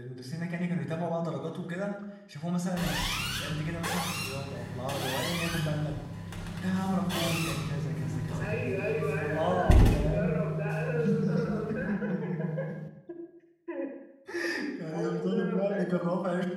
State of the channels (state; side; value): identical; both; correlation 1.00